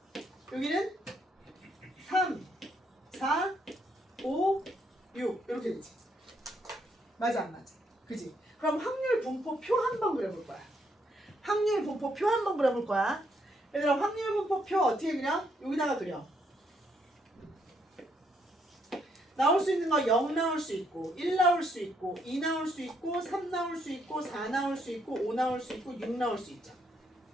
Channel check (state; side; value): normal; both; correlation 0.73